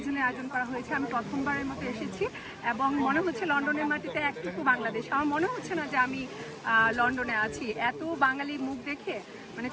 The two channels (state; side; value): identical; both; correlation 1.00